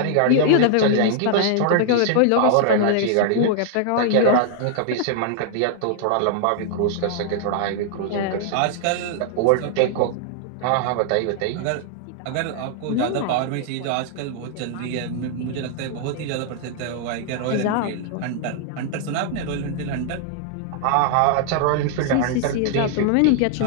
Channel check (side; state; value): both; different; correlation -0.01